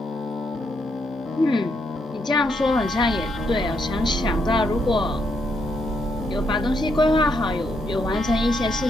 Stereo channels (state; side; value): normal; both; correlation 0.77